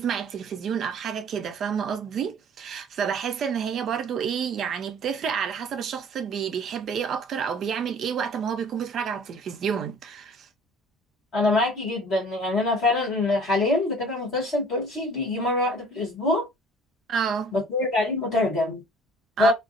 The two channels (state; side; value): normal; both; correlation 0.50